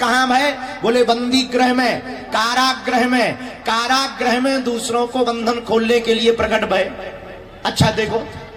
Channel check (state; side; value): identical; both; correlation 1.00